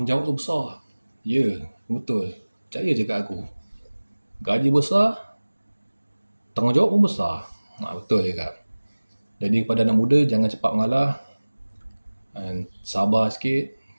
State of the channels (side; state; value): both; inverted; correlation -1.00